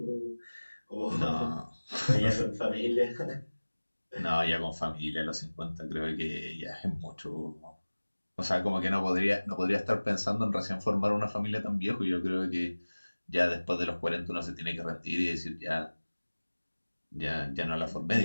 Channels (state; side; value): inverted; both; correlation -1.00